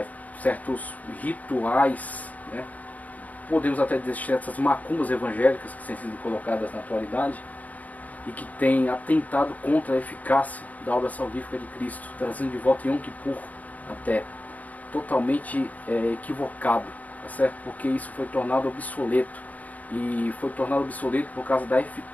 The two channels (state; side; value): late; right; 0.074 ms